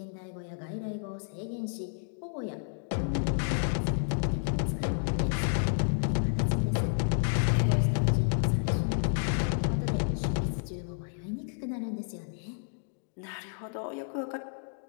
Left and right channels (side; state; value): right; silent; digital silence